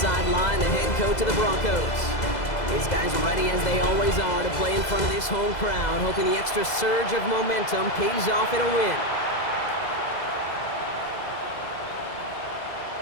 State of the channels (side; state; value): right; late; 2.0 ms